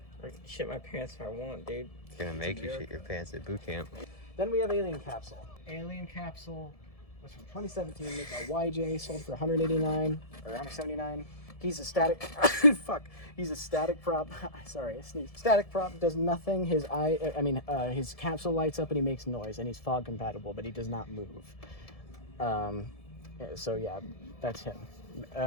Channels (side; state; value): right; late; 1.7 ms